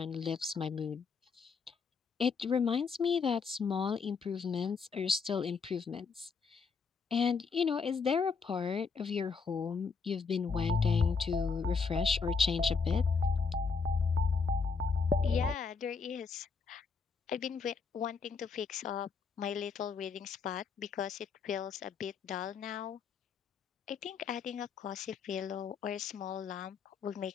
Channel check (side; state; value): right; quieter; 5.2 dB